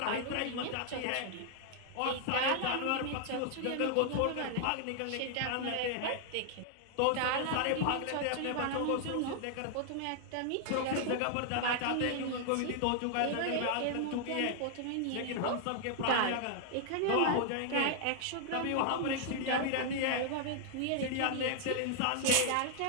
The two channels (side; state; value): both; different; correlation -0.01